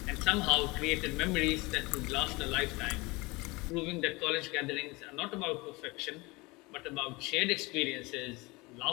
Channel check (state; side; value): quieter; right; 24.0 dB